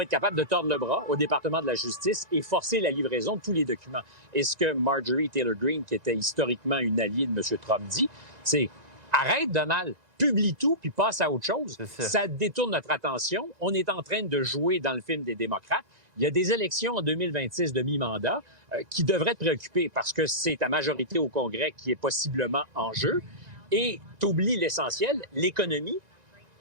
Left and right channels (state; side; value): late; left; 1.9 ms